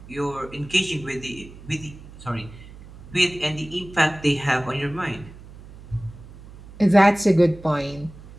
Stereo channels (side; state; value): right; noise; hum, 18 dB below the sound